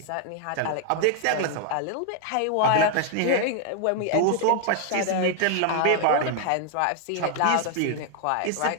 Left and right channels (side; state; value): both; different; correlation 0.00